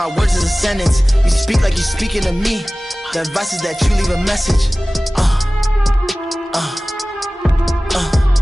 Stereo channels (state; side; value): normal; both; correlation 0.98